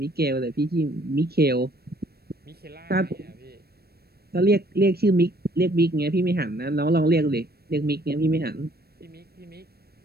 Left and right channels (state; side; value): late; left; 0.46 ms